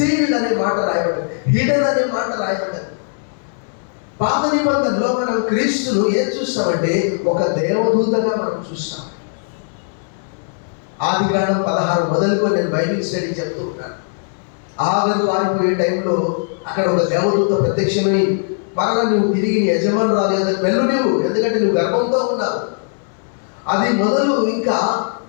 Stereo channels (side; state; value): right; silent; 67 dB below the other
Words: అనే మాట రాయబడింది, హిడెన్ అనే మాట రాయబడింది. పాత నిబంధనలో మనం క్రీస్తును ఏం చూస్తామంటే ఒక దేవదూతగా మనం చూస్తాం. ఆదికాండం 16 మొదలుకొని నేను బైబిల్ స్టడీ చెప్తూ ఉన్నాను. ఆగరు పారిపోయే టైంలో అక్కడ ఒక దేవదూత ప్రత్యక్షమై మరలా నువ్వు తిరిగి యజమానురాలు కదా వెళ్ళు నువ్వు, ఎందుకంటే నువ్వు గర్భంతో ఉన్నావు. అది మొదలు ఇంకా